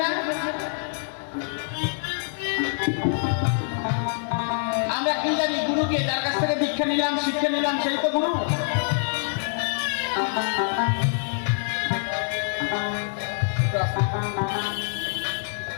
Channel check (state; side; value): silent; right; digital silence